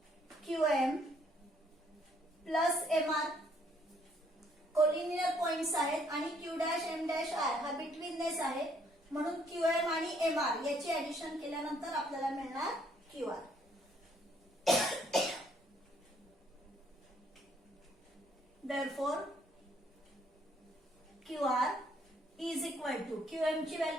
QM plus MR. Collinear points आहेत आणि Q dash M dash R हा बिटवीननेस आहे, म्हणून QM आणि MR याची ऍडिशन केल्यानंतर आपल्याला मिळणार QR. Therefore QR is equal to QM ची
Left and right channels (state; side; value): normal; both; correlation 0.67